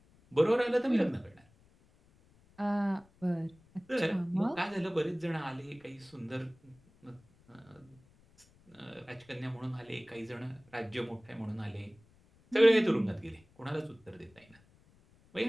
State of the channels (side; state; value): left; noise; rumble, 29 dB below the sound